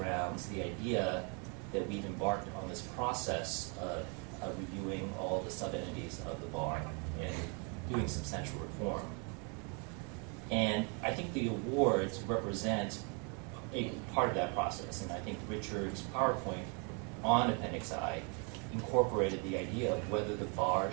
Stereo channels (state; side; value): quieter; left; 36.2 dB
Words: the idea that we've embarked on this process of reviewing all the sub-entities of the bar and doing substantial reform. And I think the awards represent a part of that process. And I think Richard's PowerPoint on Appendix I incorporated the idea of whether the bar